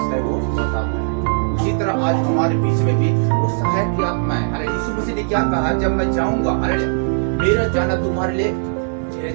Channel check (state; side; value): silent; left; 66 dB below the other